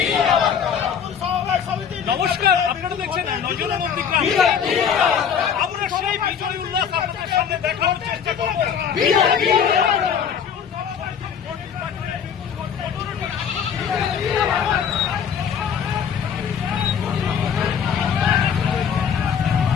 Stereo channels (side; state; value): right; quieter; 7.6 dB